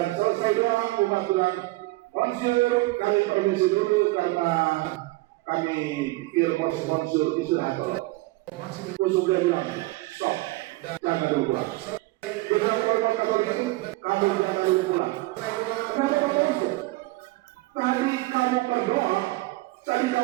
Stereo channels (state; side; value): quieter; left; 21.1 dB